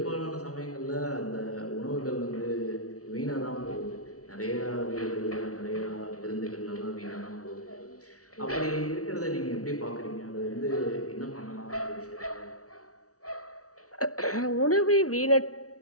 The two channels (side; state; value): right; late; 0.66 ms